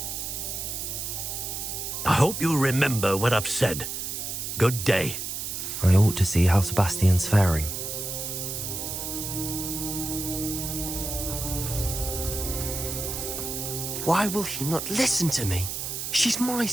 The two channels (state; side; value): noise; right; hiss, 5 dB below the sound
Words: I hope you remember what I've said. Good day. I ought to see how Sebastian's faring. Why will he not listen to me? She's my